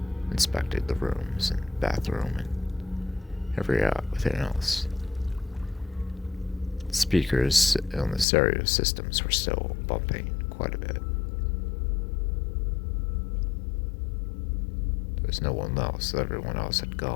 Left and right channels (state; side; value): drops out; right; at 8.2 s